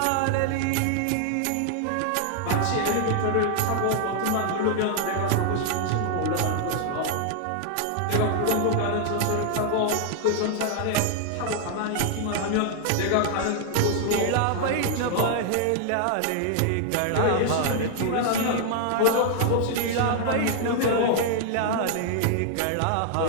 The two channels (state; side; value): different; both; correlation 0.00